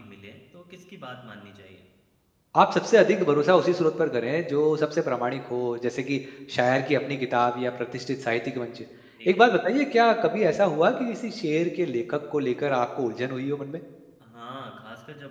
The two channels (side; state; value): both; identical; correlation 1.00